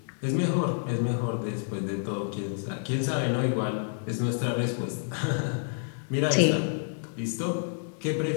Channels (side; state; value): right; silent; digital silence